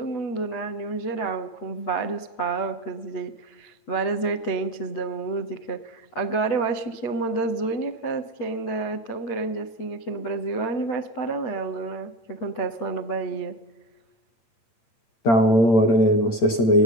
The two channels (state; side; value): late; right; 8.8 ms